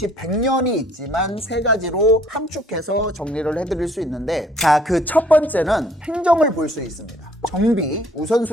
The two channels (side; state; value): both; normal; correlation 0.60